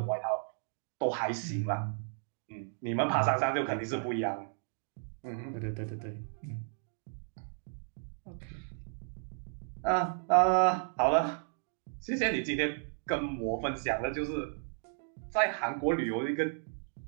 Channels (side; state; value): left; silent; digital silence